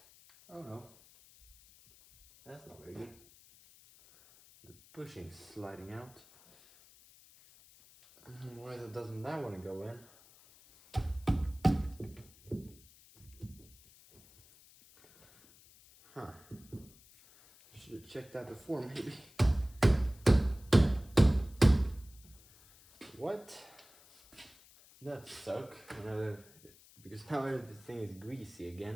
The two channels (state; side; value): noise; left; hiss, 25 dB below the sound